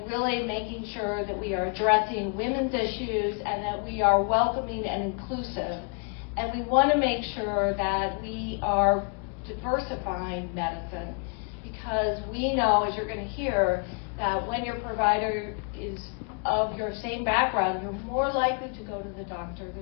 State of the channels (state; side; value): quieter; right; 39.3 dB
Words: really making sure that we are addressing women's issues and that we are welcoming and inclusive. And we want to make sure that we are diversifying medicine, because we know, as you're going to hear, that when your provider is of your same background, you're more likely to go to the doctor.